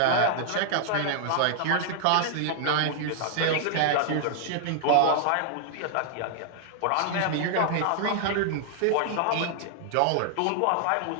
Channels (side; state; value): both; different; correlation -0.01